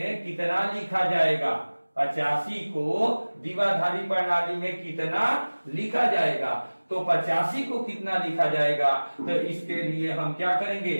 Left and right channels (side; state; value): both; inverted; correlation -1.00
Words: कितना लिखा जाएगा। 85 को द्विआधारी प्रणाली में कितना लिखा जाएगा, तो 85 को कितना लिखा जाएगा, तो इसके लिए हम क्या करेंगे,